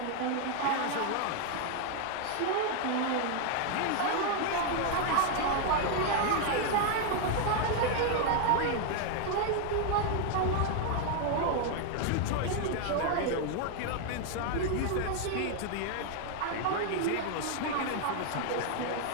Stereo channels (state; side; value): different; both; correlation 0.00